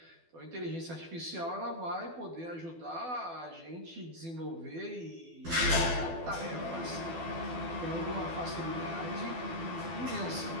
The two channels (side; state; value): left; late; 12 ms